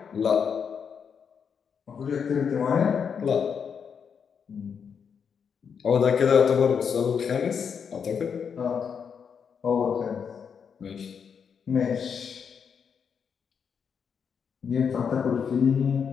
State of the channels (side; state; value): right; quieter; 6.8 dB